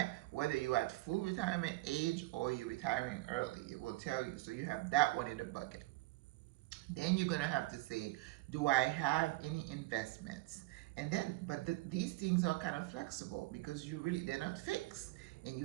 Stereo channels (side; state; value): left; quieter; 19.9 dB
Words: whether you're at full retirement age or you're retiring early, it will tell you. So you have that one in the bucket. Then you're gonna have to say, do I have any investments? And then, but these things are kind of flexible because they're not fixed and you